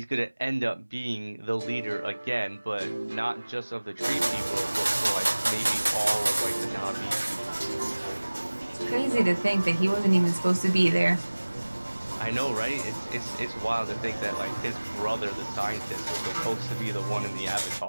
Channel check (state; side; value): inverted; both; correlation -1.00